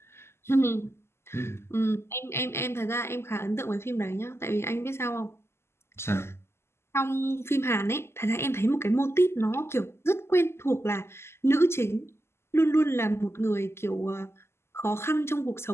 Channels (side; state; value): right; late; 0.12 ms